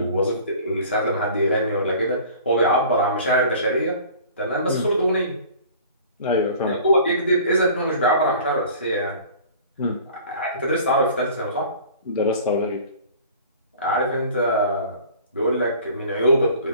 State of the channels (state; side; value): inverted; both; correlation -0.46